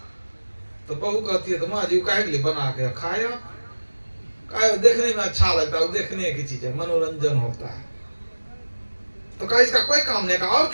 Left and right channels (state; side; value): inverted; both; correlation -1.00